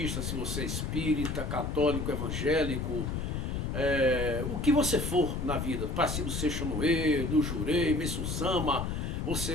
se você é espírita, católico, evangélico, o que você for na vida, Passibo Seixonoe, do Jurei, Messu Sama,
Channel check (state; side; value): noise; left; rumble, 2 dB below the sound